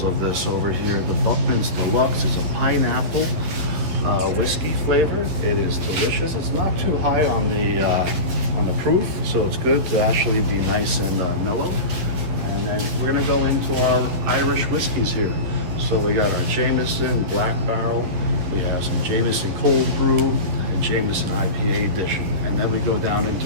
of this over here. The Buckman's Deluxe is a pineapple whiskey flavor. It is delicious. It's not too high on the proof, so it's good to actually be nice and mellow. And then we're going to go into our Irish whiskeys here. So we got our Jameson Black Barrel, we have some Jameson Cold Brew, and Jameson IPA edition. And then we go down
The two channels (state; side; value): late; left; 12 ms